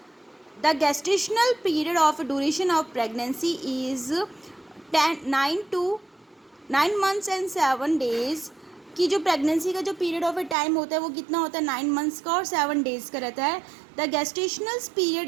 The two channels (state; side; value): drops out; left; at 10.6 s